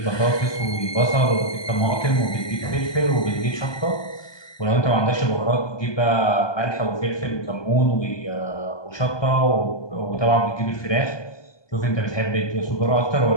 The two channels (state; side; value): late; right; 1.2 ms